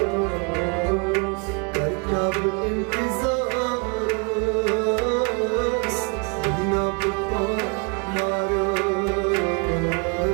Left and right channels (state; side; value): quieter; left; 34.4 dB